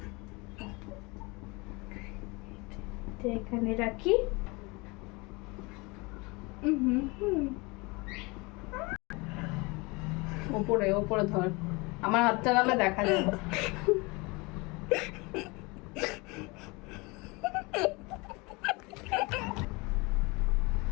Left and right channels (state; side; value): quieter; right; 26.3 dB